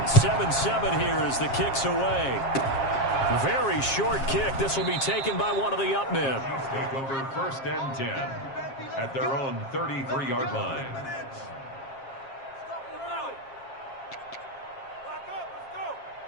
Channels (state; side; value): late; right; 7.4 ms